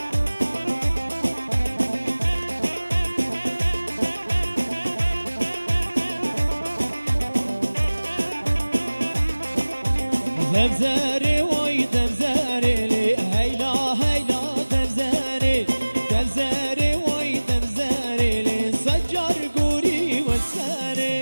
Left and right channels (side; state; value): both; inverted; correlation -1.00